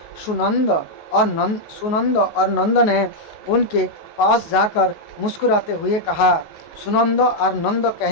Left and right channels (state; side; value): late; right; 19 ms